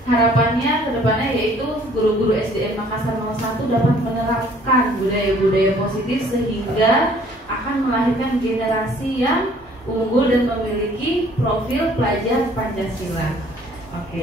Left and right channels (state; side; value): normal; both; correlation 0.57